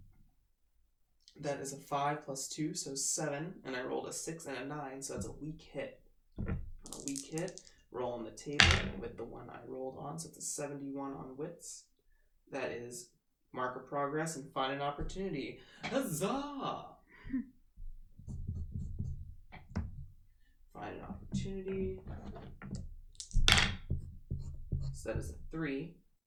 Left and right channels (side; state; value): both; identical; correlation 1.00